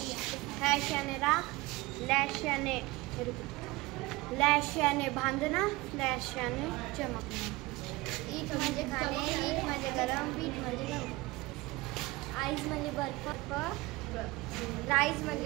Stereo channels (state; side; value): quieter; left; 21.2 dB